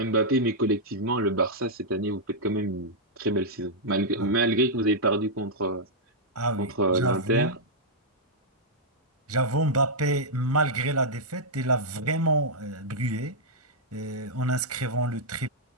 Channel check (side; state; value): both; normal; correlation -0.07